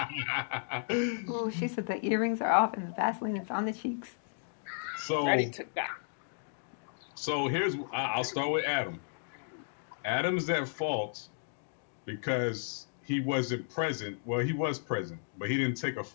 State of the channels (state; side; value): silent; right; digital silence